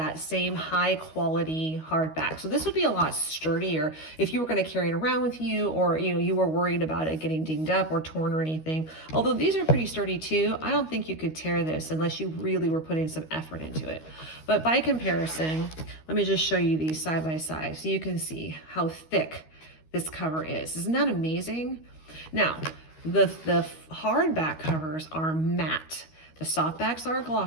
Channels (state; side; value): late; right; 13 ms